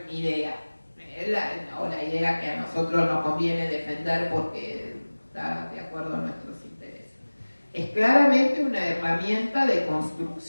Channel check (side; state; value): both; inverted; correlation -1.00